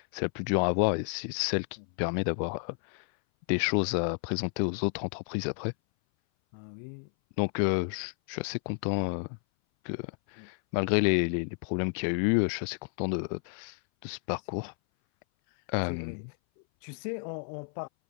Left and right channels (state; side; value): silent; right; 57 dB below the other